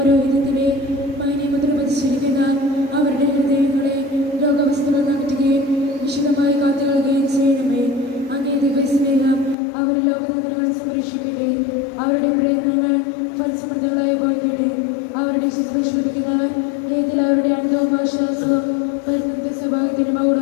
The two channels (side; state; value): right; drops out; at 9.6 s